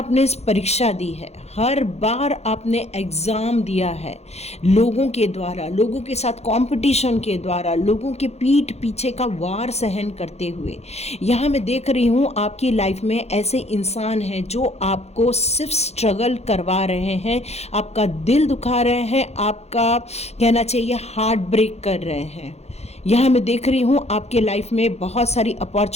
इस परीक्षा दी है, हर बार आपने एग्ज़ाम दिया है, लोगों के द्वारा, लोगों के साथ कंपटीशन के द्वारा, लोगों के पीठ पीछे का वार सहन करते हुए। यहाँ मैं देख रही हूँ आपकी लाइफ में ऐसे इंसान हैं जो आपको सिर्फ स्ट्रगल करवा रहे हैं, आपका दिल दुखा रहे हैं, आपका कहना चाहिए हार्ट ब्रेक कर रहे हैं। यहाँ मैं देख रही हूँ आपके लाइफ में बहुत सारी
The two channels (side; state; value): right; late; 0.31 ms